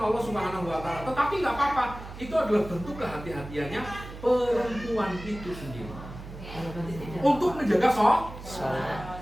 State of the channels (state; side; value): noise; right; hum, 13 dB below the sound